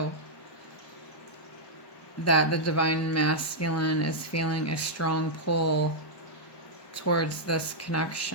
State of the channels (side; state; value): right; late; 1.1 ms